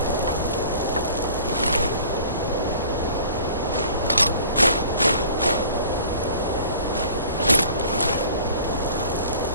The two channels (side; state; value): both; inverted; correlation -0.47